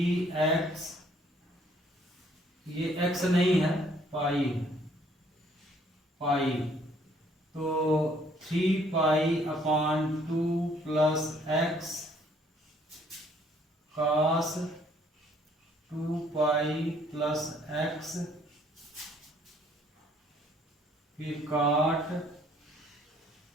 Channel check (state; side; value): normal; both; correlation 0.63